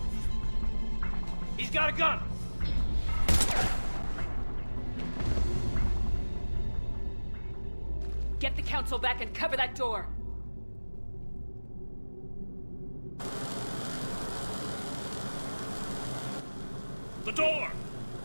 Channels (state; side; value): inverted; both; correlation -1.00